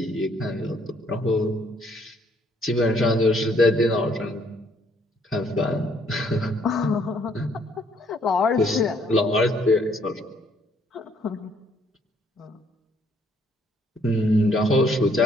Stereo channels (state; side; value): normal; both; correlation 0.66